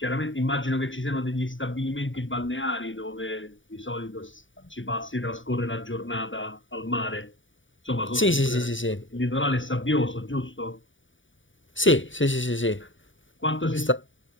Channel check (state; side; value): late; right; 0.56 ms